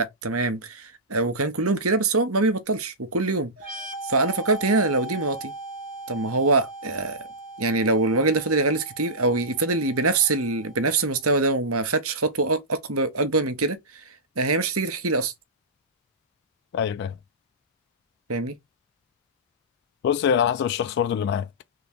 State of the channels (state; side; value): normal; both; correlation -0.16